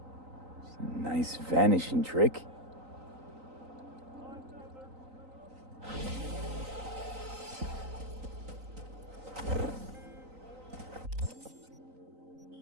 Nice vanishing trick.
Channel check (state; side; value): late; left; 3.9 ms